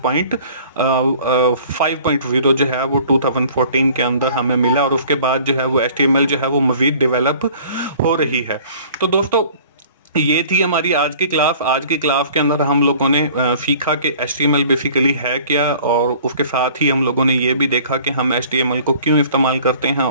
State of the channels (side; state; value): both; inverted; correlation -0.50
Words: 5.0 जो है वो 2014 के अंदर हमें मिला और उसके बाद जो है वो HTML जो है वो मज़ीद डेवलप हो रही है। तो दोस्तों ये थी हमारी आज की क्लास। आज की क्लास के अंदर हम लोगों ने सीखा कि HTML बेसिकली है क्या और उसके साथ ही हम लोगों ने ये भी देखा कि हम HTML को क्यों इस्तेमाल करते हैं